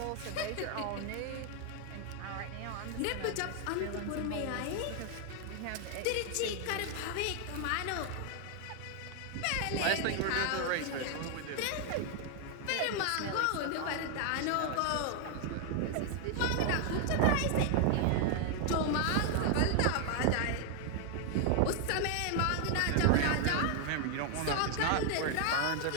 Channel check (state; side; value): different; both; correlation 0.00